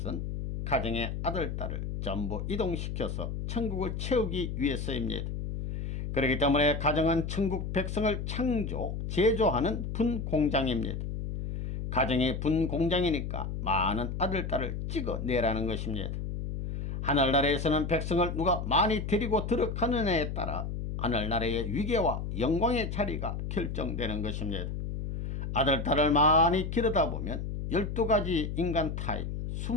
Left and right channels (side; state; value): left; noise; hum, 4 dB below the sound